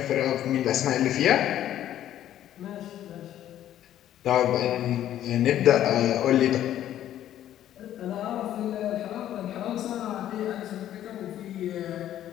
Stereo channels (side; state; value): right; quieter; 11.9 dB